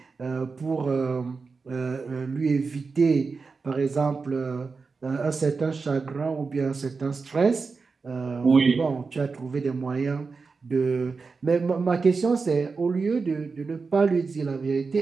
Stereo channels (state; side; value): quieter; left; 4.6 dB